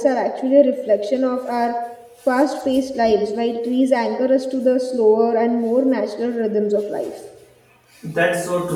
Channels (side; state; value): both; identical; correlation 1.00